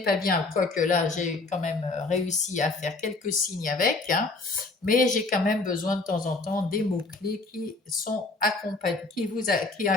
bien, quoique là, j'ai quand même réussi à faire quelques signes avec, hein, mais j'ai quand même besoin de temps en temps des mots-clés qui sont qui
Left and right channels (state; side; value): quieter; right; 3.5 dB